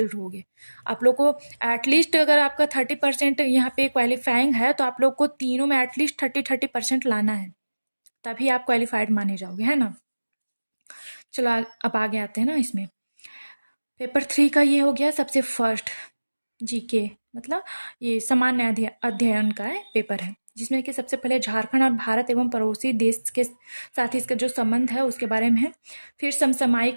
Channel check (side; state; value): both; inverted; correlation -1.00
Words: रहोगे। आप लोग को एटलीस्ट अगर आपका 30% यहाँ पे क्वालिफाइंग है तो आप लोग को तीनों में एटलीस्ट 30% लाना है, तभी आप क्वालिफाइड माने जाओगे, है ना। चलो अब आगे आते हैं ना इसमें। पेपर 3 का ये हो गया सबसे फर्स्ट जीके, मतलब ये सामान्य अध्ययन का है पेपर है, जिसमें कि सबसे पहले झारखंड और भारत एवं पड़ोसी देश के साथ इसका जो संबंध है उसके बारे में है। फिर